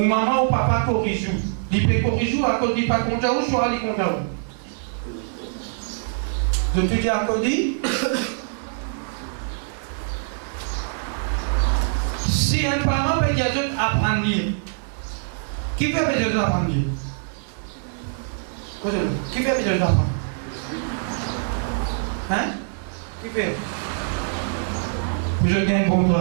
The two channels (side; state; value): left; silent; 63 dB below the other